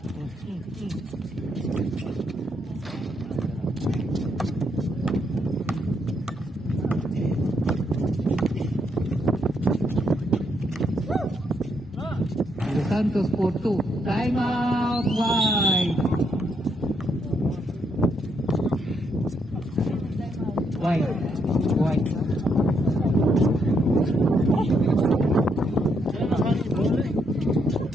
Santos for 2. Time out wide. Wide.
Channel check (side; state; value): both; normal; correlation 0.76